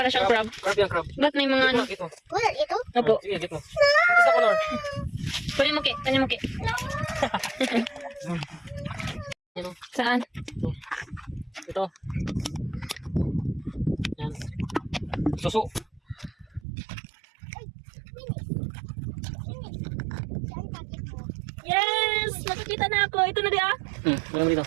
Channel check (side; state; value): left; drops out; at 16.6 s